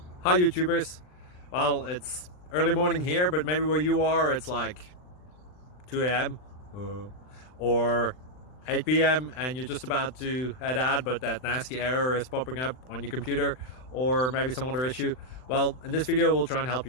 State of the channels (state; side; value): late; right; 39 ms